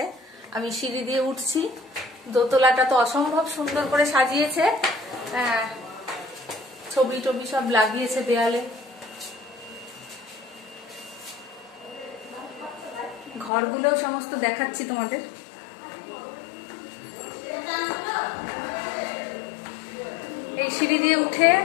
আমি সিঁড়ি দিয়ে উঠছি। দোতলাটা তো অসম্ভব সুন্দর করে সাজিয়েছে, ছবি টবি সব লাগিয়েছে দেয়ালে। ঘরগুলোও সমস্ত দেখাচ্ছি তোমাদের। এই সিঁড়ি দিয়ে উঠে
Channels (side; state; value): right; drops out; at 13.5 s